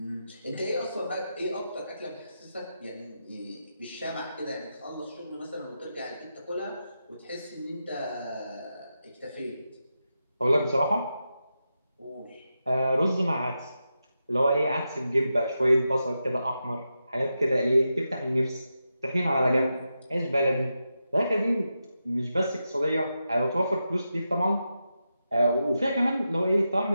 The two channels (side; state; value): both; inverted; correlation -0.88